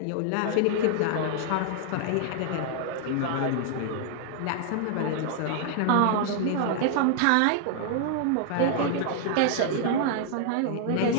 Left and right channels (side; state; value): both; different; correlation 0.00